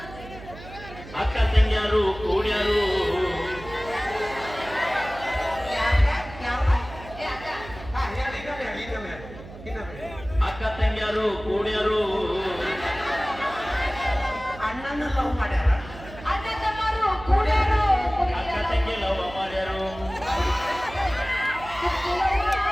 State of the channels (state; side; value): noise; right; hum, 15 dB below the sound